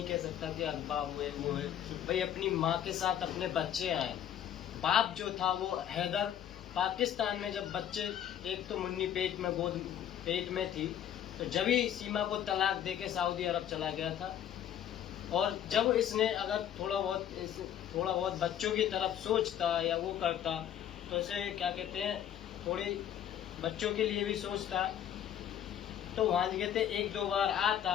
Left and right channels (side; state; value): right; quieter; 10.2 dB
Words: कह सकता कि अगवा हुए वो है। भाई अपनी माँ के साथ अपने बच्चे आए। बाप जो था वो हैदर पाकिस्तान में, जब बच्चे, एक तो मुन्नी पेट में थी, तो जब ही सीमा को तलाक देके सऊदी अरब चला गया था। और जब इसने अगर थोड़ा बहुत बच्चों की तरफ सोचता या वो करता, तो इसे क्या कहते हैं, थोड़ी बच्चों के लिए भी सोचता, तो वहाँ कहते 1-2 बार आता,